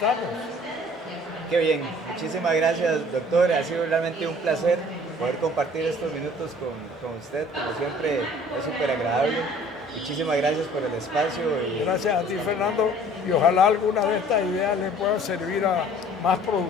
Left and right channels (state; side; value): normal; both; correlation 0.52